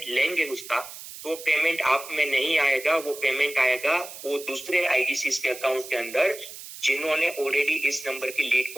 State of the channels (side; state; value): right; noise; hiss, 13 dB below the sound